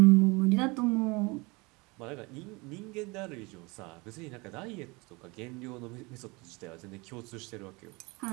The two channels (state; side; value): quieter; left; 26.0 dB